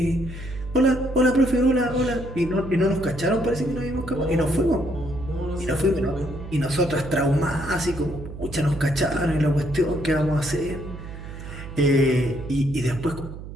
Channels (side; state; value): right; noise; hum, 11 dB below the sound